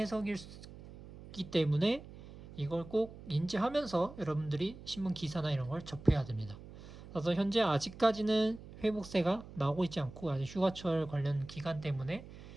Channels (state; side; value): noise; right; hum, 16 dB below the sound